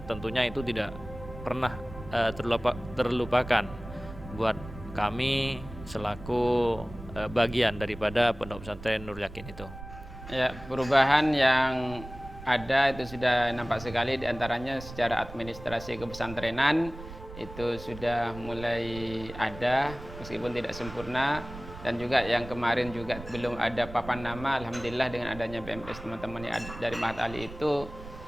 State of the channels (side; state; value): right; noise; rumble, 14 dB below the sound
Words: Tentunya itu tidak pernah terlupakan buat kami selaku bagian daripada Pondok Pesantren Nurul Yakin itu. Ya, perubahan yang ada itu sudah nampak sekali, diantaranya secara administrasi kepesantrenan itu sudah mulai ada meskipun tidak sempurna, dan juga yang kemarin juga belum ada papan nama. Alhamdulillah dengan adanya BMS teman-teman dari Mahat Ali itu